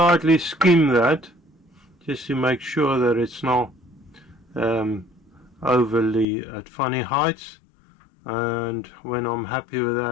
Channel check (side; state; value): right; drops out; at 6.2 s